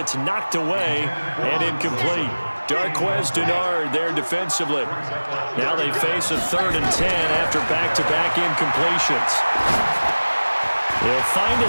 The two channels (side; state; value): both; inverted; correlation -1.00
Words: knocked away and incomplete. Darquez Denard there defensively. Now they face a 3rd and 10 after back-to-back incompletions. He'll find